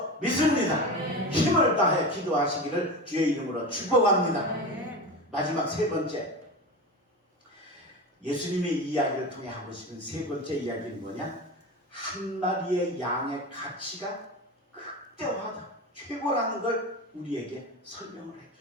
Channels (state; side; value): normal; both; correlation 0.26